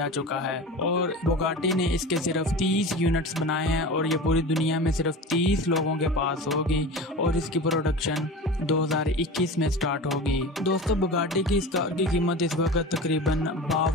चुका है। और बुगाटी ने इसके सिर्फ 30 यूनिट्स बनाए हैं और ये पूरी दुनिया में सिर्फ 30 लोगों के पास होगी और इसकी प्रोडक्शन 2021 में स्टार्ट होगी। दोस्तों, बुगाटी की इस कार की कीमत इस वक्त तकरीबन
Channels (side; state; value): both; normal; correlation 0.32